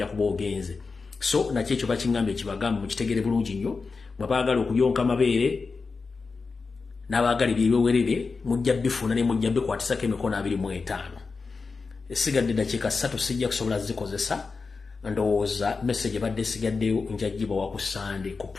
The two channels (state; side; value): quieter; right; 4.5 dB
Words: kuba ogenze so nakyo ekyo bakiŋŋamba ekibagamba mukitegere bulungi nnyo bwe baagala okuyonka amabeere n'abaagala ebyewerere mujja bifuna ne mujja bikwatisako emikono 25 esigadde dakiika 3 sijja kusobola zikozesa ndowooza message badde sigaddeyo njagibwa wa ku Sunday ku